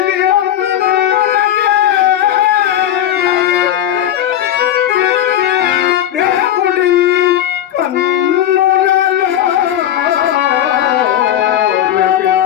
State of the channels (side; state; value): right; quieter; 11.2 dB